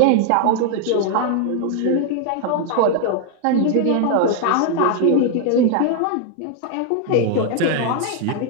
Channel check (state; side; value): different; both; correlation 0.00